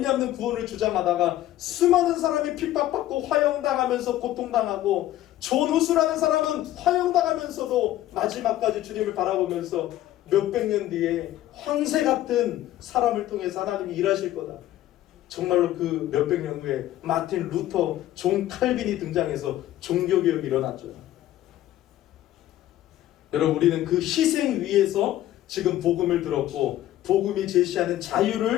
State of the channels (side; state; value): right; quieter; 13.9 dB